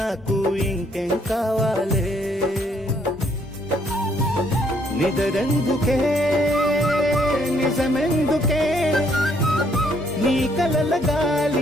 ఇంకేం కావాలే నిదరెందుకే నిజమెందుకే నీ కలల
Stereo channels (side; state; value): both; normal; correlation 0.68